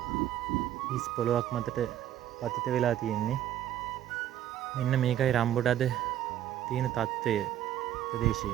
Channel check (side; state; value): left; quieter; 11.7 dB